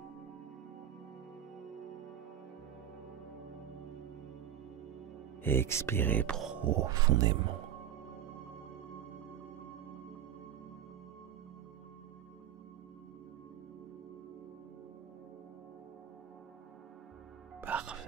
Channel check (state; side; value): quieter; left; 9.9 dB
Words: Et expirez profondément.